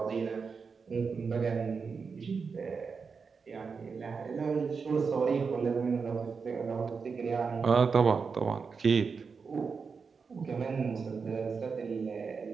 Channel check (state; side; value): quieter; left; 5.3 dB